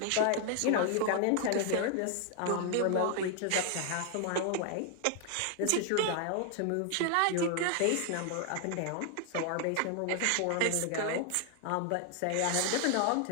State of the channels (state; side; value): different; both; correlation 0.00